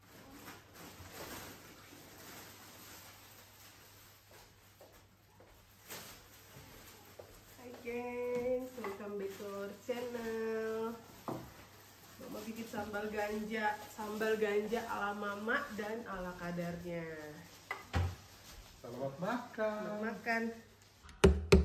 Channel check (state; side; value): identical; both; correlation 1.00